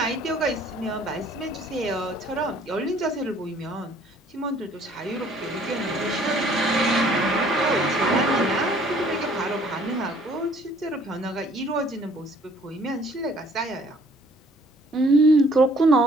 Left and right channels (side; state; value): both; normal; correlation 0.58